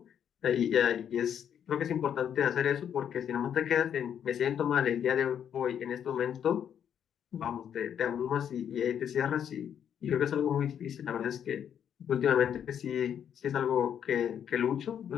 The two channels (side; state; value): right; quieter; 8.9 dB